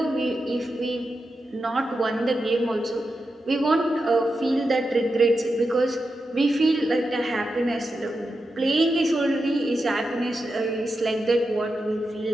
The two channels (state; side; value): normal; both; correlation 0.89